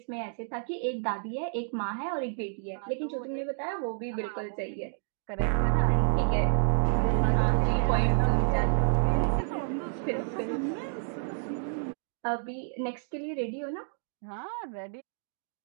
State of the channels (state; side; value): silent; left; digital silence